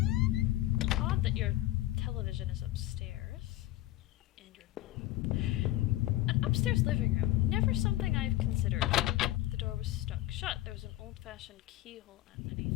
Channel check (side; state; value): right; quieter; 15.6 dB